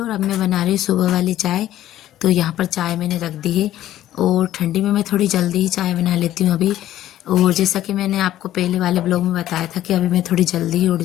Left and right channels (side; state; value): right; quieter; 13.2 dB